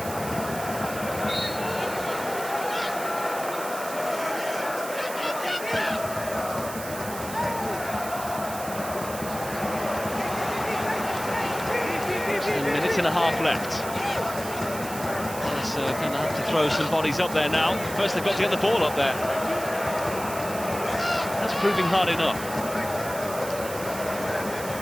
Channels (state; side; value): noise; right; hiss, 11 dB below the sound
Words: Just a minute and a half left. They're going to have to throw some bodies up there now. First they've got to get the ball up there. That's proving hard enough.